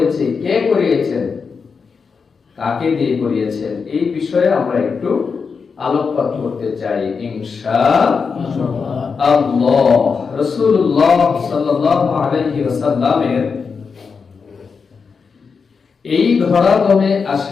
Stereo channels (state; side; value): quieter; right; 5.4 dB